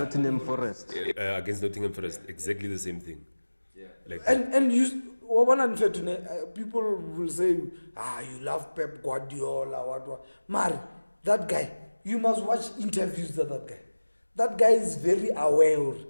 Forest. Against Nottingham Forest, exactly the same thing. Yeah. Like and you, one unfair to people will say, you love Pep Guardiola, what. Mari, that guy, you must watch interviews of that guy. That guy is very aware.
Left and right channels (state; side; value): inverted; both; correlation -1.00